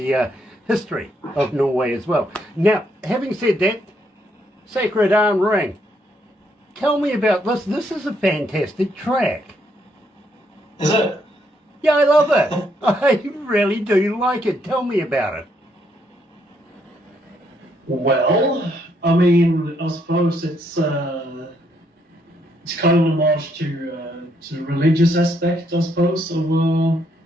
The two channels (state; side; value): normal; both; correlation 0.73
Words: history of Norway as well. Now, having said that, Sacred Arm Ring. Tell me about this. This is a fantastic track. Is it? Yeah, I love it. I really do like it. Tell me about it. Well, I mean, I suppose it's kind of a homage to the religious aspect, I suppose, of